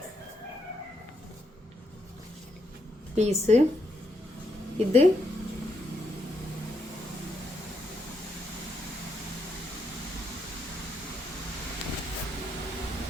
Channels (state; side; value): normal; both; correlation 0.78